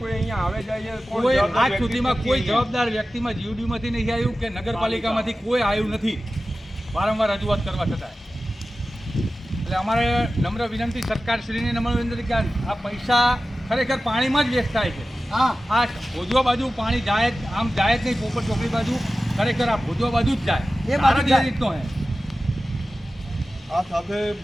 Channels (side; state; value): both; normal; correlation 0.95